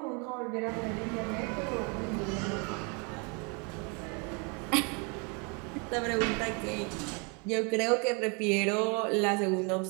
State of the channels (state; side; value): quieter; left; 33.4 dB